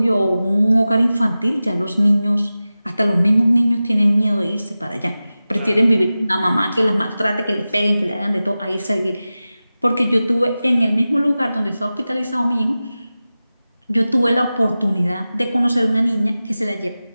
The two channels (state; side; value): inverted; both; correlation -0.95